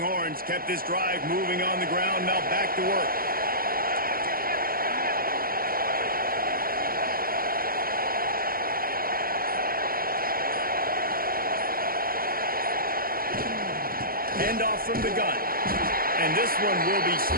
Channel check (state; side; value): late; left; 0.42 ms